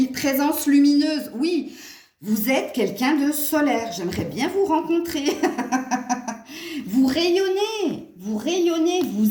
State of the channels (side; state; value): both; identical; correlation 1.00